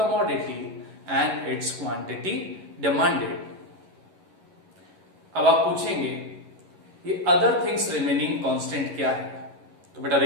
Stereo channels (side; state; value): left; late; 11 ms